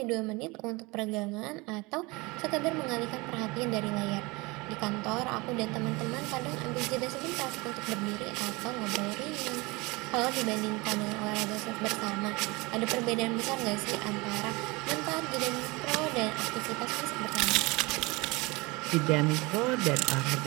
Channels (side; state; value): left; quieter; 24.7 dB